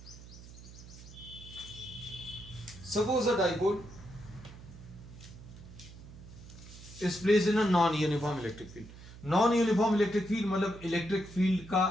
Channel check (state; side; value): noise; right; hum, 17 dB below the sound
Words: Suppose a dipole is placed in a non uniform electric field. Non uniform electric field मतलब इलेक्ट्रिक फील्ड का